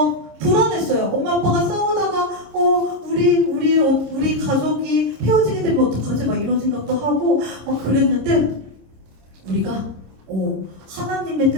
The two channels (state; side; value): late; left; 26 ms